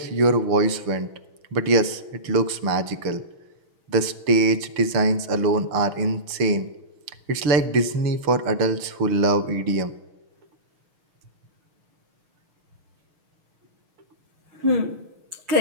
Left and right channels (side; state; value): left; late; 6.8 ms